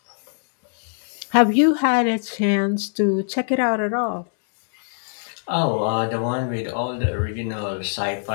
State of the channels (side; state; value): right; silent; digital silence